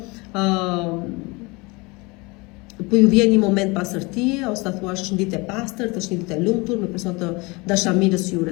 po ju vjen një moment pasërtie, ose ta thuash është një ditë e pastërt, është një ditë e lumtur, me person të dashamirës që ju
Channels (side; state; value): right; quieter; 25.9 dB